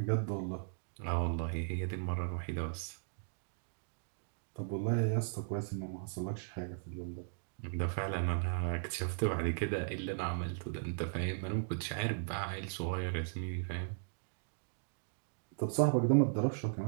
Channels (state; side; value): silent; left; digital silence